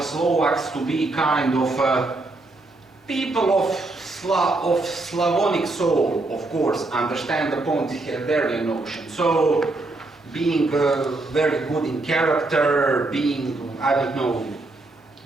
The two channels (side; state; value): left; quieter; 3.1 dB